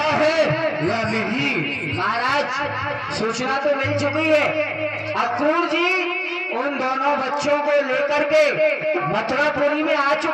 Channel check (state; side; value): identical; both; correlation 1.00